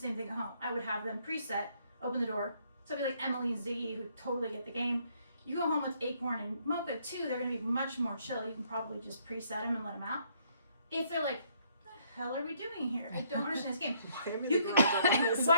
thing at home. I would have them preset, open the door. Somebody like Emily and Ziggy who totally get the game. You go home with Acorn and Mocha too, they're gonna be much more chill. You can probably just preset them and let them out. If they're like, what the hell are we doing here? I don't understand this game.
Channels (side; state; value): both; inverted; correlation -0.67